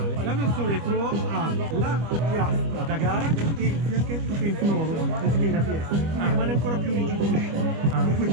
La versione Pro ha la piastra da gara e il fianchetto penfinolo anziché in ABS, quindi rimane ancora più rigido lo sci. Per cui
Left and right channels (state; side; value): late; left; 25 ms